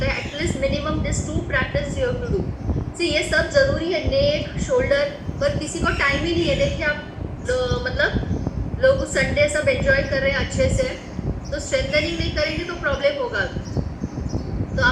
at least minimum this 2 practice you have to do. See ये सब जरूरी है, नेक शोल्डर, पर किसी को टाइम ही नहीं है। देखिए आप मतलब लोग संडे सब एंजॉय कर रहे हैं अच्छे से, तो स्ट्रेंथनिंग नहीं करेंगे तो प्रॉब्लम होगा। तो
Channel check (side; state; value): both; identical; correlation 1.00